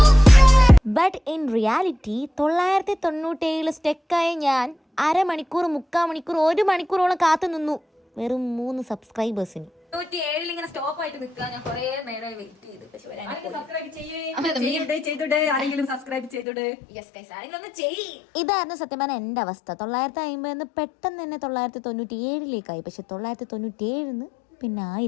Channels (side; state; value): right; drops out; at 16.4 s